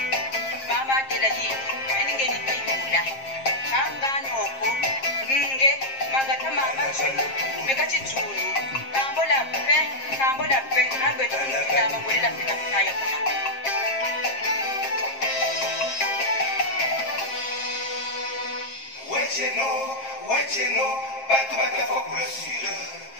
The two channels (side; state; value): right; late; 7.5 ms